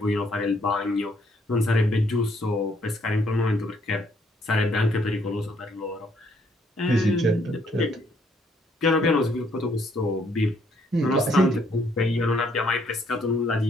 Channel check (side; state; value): both; normal; correlation 0.68